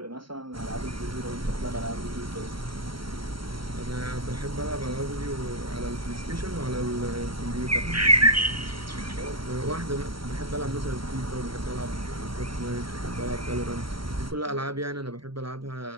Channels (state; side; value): late; left; 0.74 ms